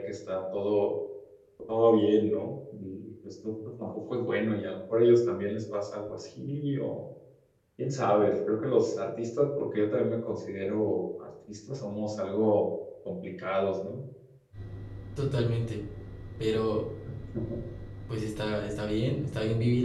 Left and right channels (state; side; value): identical; both; correlation 1.00